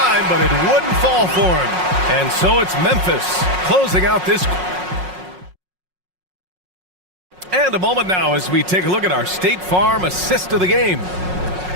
but it wouldn't fall for him. And so it's Memphis closing out this. And a moment now as we take a look at our State Farm assist of the game.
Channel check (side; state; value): left; late; 5.5 ms